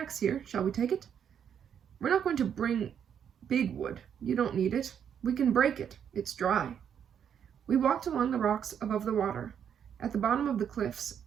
here. Shall we take it?" "We're not going to bring big wood. You don't need it. We can break it. It's dry." We walked along the rocks above the water. At the bottom of the cliffs,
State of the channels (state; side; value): quieter; left; 8.4 dB